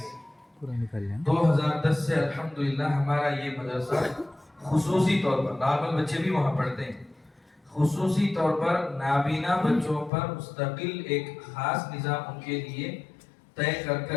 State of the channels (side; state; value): right; drops out; at 10.1 s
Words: 2010 سے الحمدللہ ہمارا یہ مدرسہ خصوصی طور پر نارمل بچے بھی وہاں پڑھتے ہیں، خصوصی طور پر نابینا بچوں پر مستقل ایک خاص نظام ان کے لیے طے